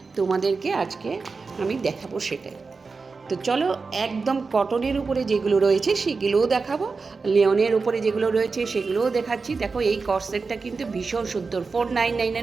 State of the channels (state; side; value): quieter; left; 4.5 dB